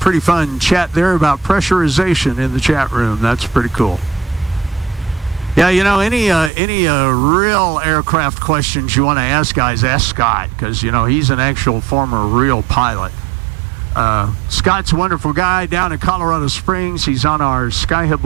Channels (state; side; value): drops out; left; at 6.5 s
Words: fun chat there about pressurization in the chat room. That's pretty cool. Yeah, you know, any real aircraft questions you want to ask, guys, ask Scott, because, you know, he's an actual former real pilot. Scott's a wonderful guy down in Colorado Springs. He's on our